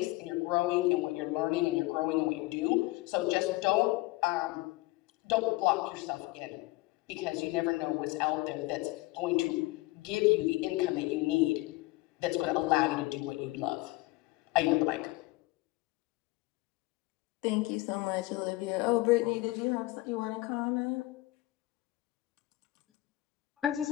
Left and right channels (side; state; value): right; quieter; 20.3 dB